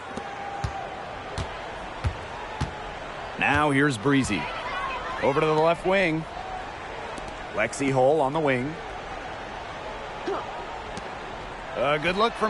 Now here's Breezy. Over to the left wing. Lexi Hull on the wing. A good look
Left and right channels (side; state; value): both; identical; correlation 1.00